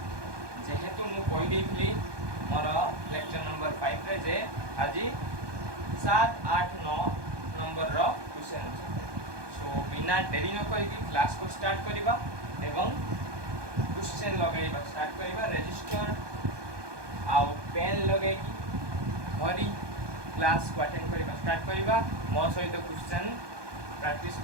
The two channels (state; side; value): late; left; 1.2 ms